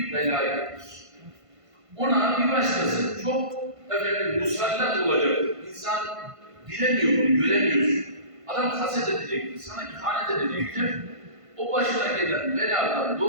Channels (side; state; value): left; late; 1.5 ms